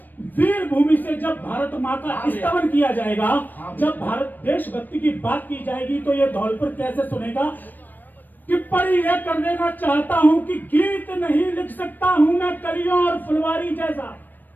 वीर भूमि से जब भारत मां का स्तवन किया जाएगा, जब भारत देशभक्ति की बात की जाएगी, तो ये धौलपुर कैसे सुनेगा। टिप्पणी यह कर देना चाहता हूं कि गीत नहीं लिख सकता हूं मैं कलियों और फुलवारी जैसा।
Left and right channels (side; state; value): right; late; 0.089 ms